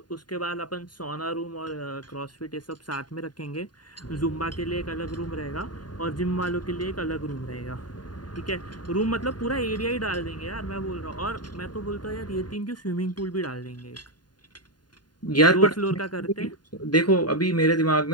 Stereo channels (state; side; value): late; right; 0.70 ms